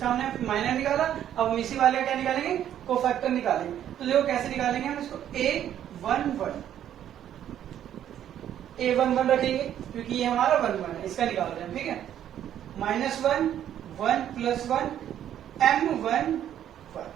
हमने माइनर निकाला, अब हम इसी वाले का क्या निकालेंगे, कोफैक्टर निकालेंगे। तो देखो कैसे निकालेंगे हम इसको, A11 रखेंगे क्योंकि ये हमारा 11 है, इसका निकाल रहे हैं। ठीक है, -1 1 + 1 M11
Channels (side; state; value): left; quieter; 10.6 dB